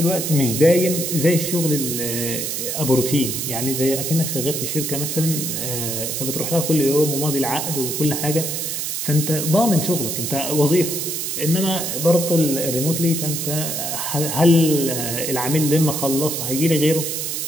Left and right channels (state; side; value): noise; right; hiss, 3 dB below the sound